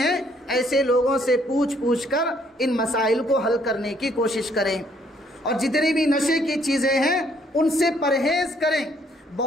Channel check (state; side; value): normal; both; correlation 0.67